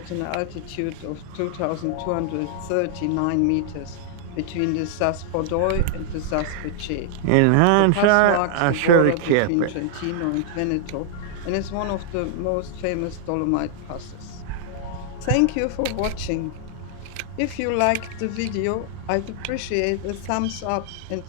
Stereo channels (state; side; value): different; both; correlation 0.00